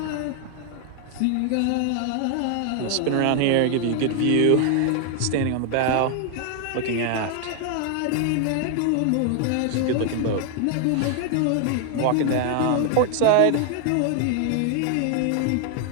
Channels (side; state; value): both; different; correlation 0.00